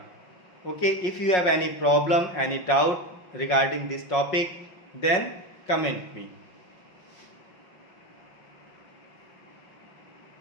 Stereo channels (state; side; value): late; right; 5.5 ms